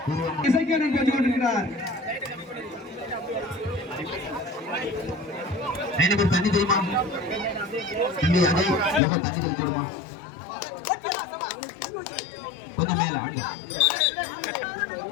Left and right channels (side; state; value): right; drops out; at 9.0 s